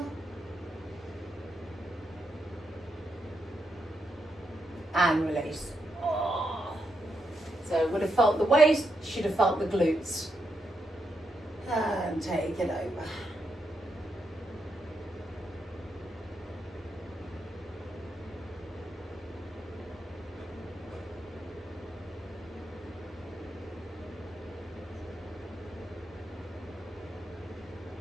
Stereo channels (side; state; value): both; normal; correlation 0.82